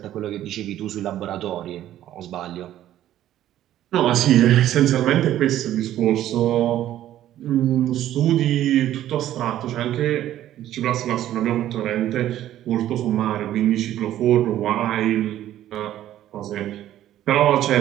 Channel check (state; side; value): quieter; left; 12.6 dB